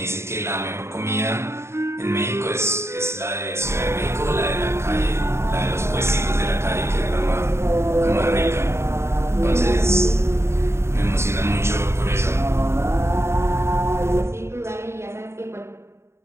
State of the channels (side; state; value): left; late; 0.13 ms